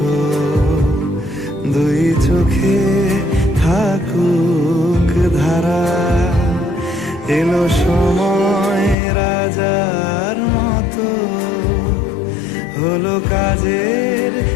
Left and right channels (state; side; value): drops out; right; at 9.0 s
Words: দুই চোখে থাকুক ধারা। এলো সময় রাজার মতো, হলো কাজের